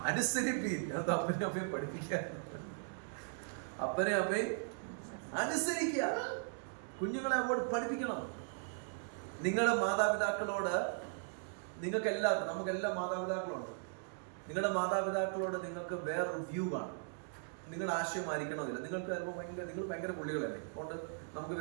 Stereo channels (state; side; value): silent; left; digital silence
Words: അനുസരിപ്പീൻ. അത് അപ്പനെ അമ്മയും പഠിപ്പിക്കാൻ, അപ്പനെ അമ്മയും അനുസരിക്കുക. കുഞ്ഞുങ്ങളെ അങ്ങോട്ട് പഠിപ്പിക്കണം. നിങ്ങളുടെ മാതാപിതാക്കളോട്, നിങ്ങൾക്ക് എല്ലാവർക്കും, നമുക്കെല്ലാം മാതാപിതാക്കളുണ്ട്. നിങ്ങളുടെ മാതാപിതാക്കളോട് നിങ്ങൾക്ക് വേറൊരു വ്യൂ കാണും. നിങ്ങളുടെ ആശയം ആയിരിക്കണമെന്നില്ല. നിങ്ങൾ ഭയങ്കര പുള്ളികളല്ലേ, അതുകൊണ്ട് നമുക്ക്